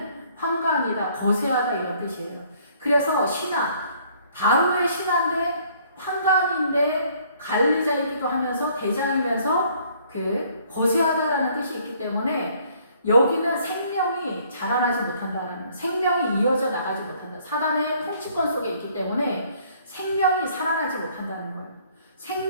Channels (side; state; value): both; inverted; correlation -0.61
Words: 환관이다, 거세하다 이런 뜻이에요. 그래서 신하, 바로의 신하인데 환관인데 관리자이기도 하면서 대장이면서 그 거세하다라는 뜻이 있기 때문에 여기는 생명이 자라나지 못한다라는, 생명이 이어져 나가지 못한다. 사단의 통치권 속에 있기 때문에 생명이 살아나지 못한다는 거예요.